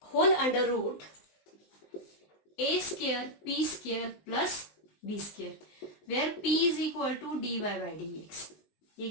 whole under root a square p square plus b square, where p is equal to dy by dx। ये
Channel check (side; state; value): right; late; 19 ms